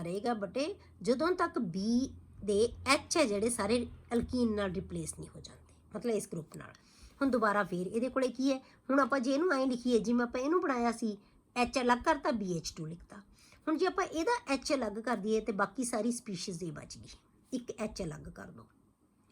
ਰਹੇਗਾ ਬੇਟੇ ਜਦੋਂ ਤੱਕ ਬੀ ਦੇ ਐਚ ਹੈ ਜਿਹੜੇ ਸਾਰੇ ਅਲਕੀਨ ਨਾਲ ਰਿਪਲੇਸ ਨਹੀਂ ਹੋ ਜਾਂਦੇ, ਮਤਲਬ ਇਸ ਗਰੁੱਪ ਨਾਲ। ਹੁਣ ਦੁਬਾਰਾ ਫੇਰ ਇਹਦੇ ਕੋਲੇ ਕੀ ਹੈ, ਹੁਣ ਆਪਾਂ ਜੇ ਇਹਨੂੰ ਐਂ ਲਿਖੀਏ ਜਿਵੇਂ ਆਪਾਂ ਇਹਨੂੰ ਬਣਾਇਆ ਸੀ ਐਚ ਅਲੱਗ ਕਰਤਾ BH2 ਲਿਖਤਾ। ਹੁਣ ਜੇ ਆਪਾਂ ਇਹਦਾ ਐਚ ਅਲੱਗ ਕਰ ਦਈਏ ਤੇ ਬਾਕੀ ਸਾਰੀ ਸਪੀਸ਼ੀਜ਼ ਇਹ ਬਚ ਗਈ, ਇੱਕ ਐਚ ਅਲੱਗ ਕਰ ਦੋ।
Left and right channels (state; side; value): identical; both; correlation 1.00